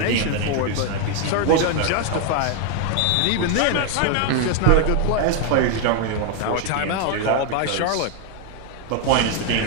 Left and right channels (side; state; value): both; different; correlation 0.00